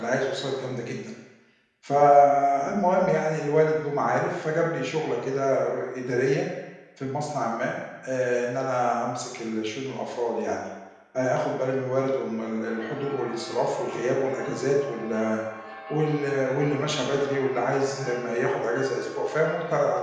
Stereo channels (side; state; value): both; identical; correlation 1.00